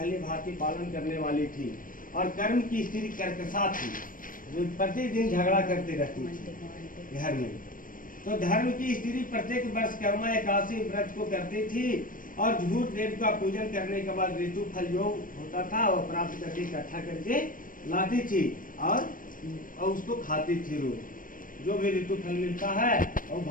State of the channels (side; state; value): right; late; 0.40 ms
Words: भांति पालन करने वाली थी। और कर्म की स्त्री कर्कशा थी, जो प्रतिदिन झगड़ा करती रहती थी घर में। तो धर्म की स्त्री प्रत्येक वर्ष कर्मा एकादशी व्रत को करती थी और झूठ देव का पूजन करने के बाद ऋतु फल जो होता था वो प्राप्त करके इकट्ठा करके लाती थी और उसको खाती थी। रोज जो भी ऋतु फल मिलता है और